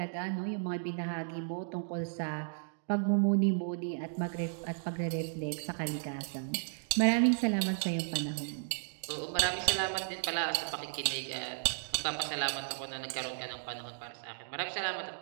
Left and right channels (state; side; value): silent; left; digital silence